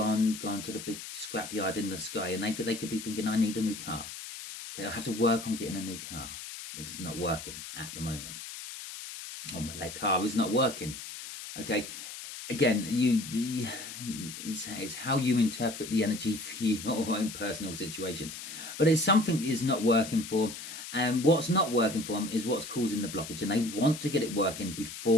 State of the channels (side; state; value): left; noise; hiss, 10 dB below the sound